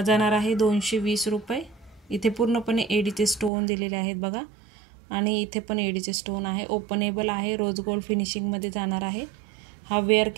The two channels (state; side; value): drops out; left; at 3.5 s